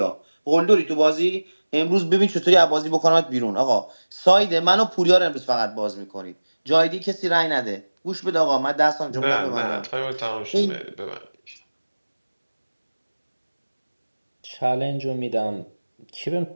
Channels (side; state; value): both; inverted; correlation -1.00